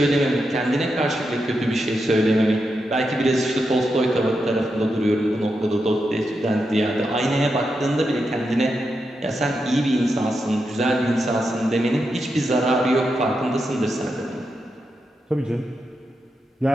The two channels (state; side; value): normal; both; correlation 0.86